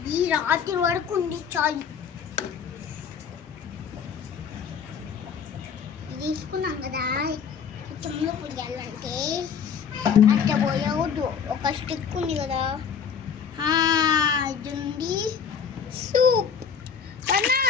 ఈ రాత్రి వరకు ఉంది చాలు తీసుకున్నాం కదా చెమ్ములు పుయ్యాలంటే అట్లా పోయవద్దు ఒక స్టిక్ ఉంది కదా ఇది ఉంది సూప్ అన్నా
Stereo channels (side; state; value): right; quieter; 7.0 dB